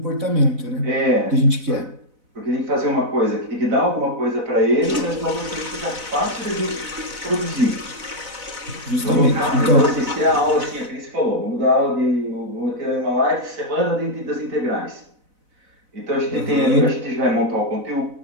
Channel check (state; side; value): late; left; 4.0 ms